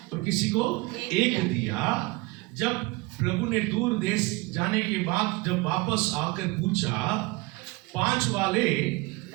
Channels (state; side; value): quieter; left; 23.0 dB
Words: और किसी को 1 दिया, जब प्रभु ने दूर देश जाने के बाद जब वापस आकर पूछा, 5 वाले